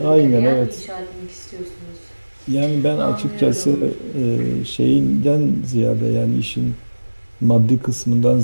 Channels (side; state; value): both; inverted; correlation -1.00